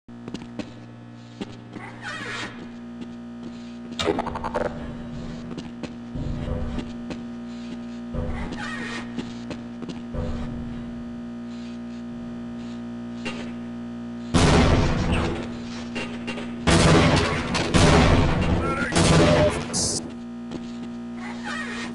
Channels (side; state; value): both; identical; correlation 1.00